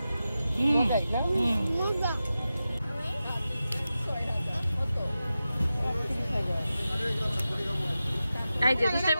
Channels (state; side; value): inverted; both; correlation -0.93